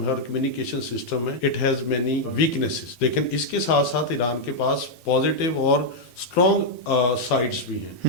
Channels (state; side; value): late; right; 12 ms